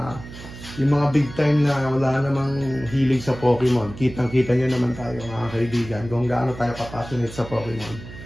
yung mga big time na wala namang hilig sa Pokemon. Kitang-kita nyo naman tayo mga kaibigan kung gaano tayo kapassionate sa Pokemon.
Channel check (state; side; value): noise; right; hum, 14 dB below the sound